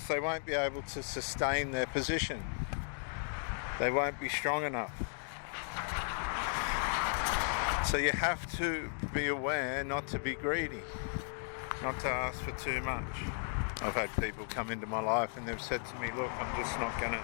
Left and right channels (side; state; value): right; silent; 54 dB below the other